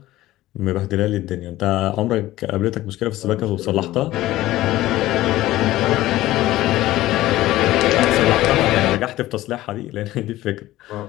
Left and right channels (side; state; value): right; quieter; 16.1 dB